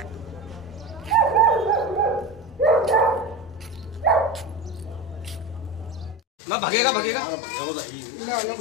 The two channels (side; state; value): right; drops out; at 6.2 s